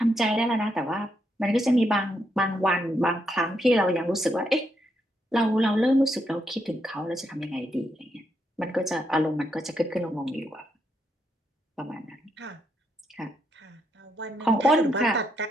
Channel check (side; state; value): both; normal; correlation 0.79